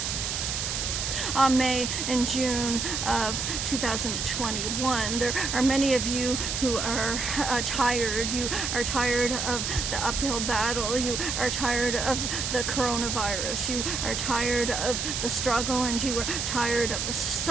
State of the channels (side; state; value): right; noise; hiss, 2 dB below the sound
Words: May and June of 2021. There are many of you who are tired. You are tired of the uphill battle. You are tired of the coronavirus. You are tired of the struggle, and you are tired of the